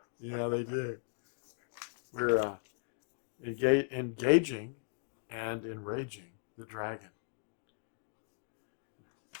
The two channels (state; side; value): silent; right; digital silence